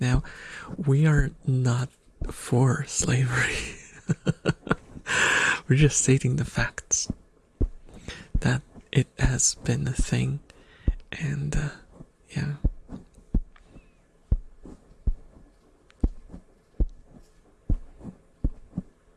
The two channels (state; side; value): identical; both; correlation 1.00